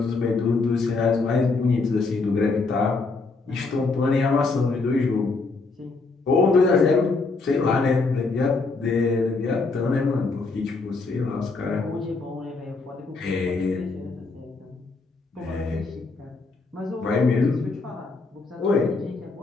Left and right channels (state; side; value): quieter; right; 3.9 dB